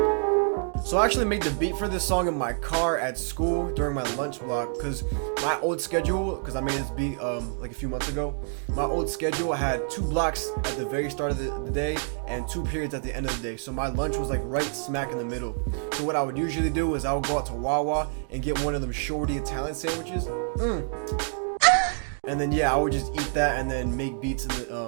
I actually made the beat for this song in my car at school during my lunch block, because my old schedule, because I made this beat like a few months ago, my old schedule had 2 blocks at the very start of the day and 2 periods at the end of the day. So my lunch was like right smack in the middle. So what I would usually do is I would go out to Wawa and get one of them shorty Italian sandwiches. And then yeah, I would just eat that and then make beats in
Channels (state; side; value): silent; left; 60 dB below the other